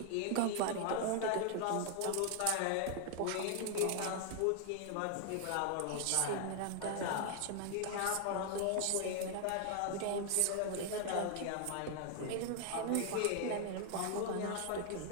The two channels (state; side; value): different; both; correlation 0.00